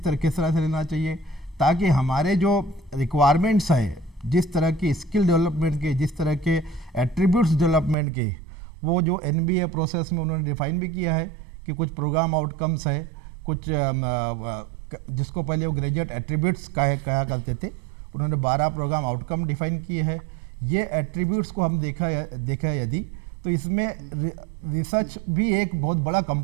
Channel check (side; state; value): left; drops out; at 8.0 s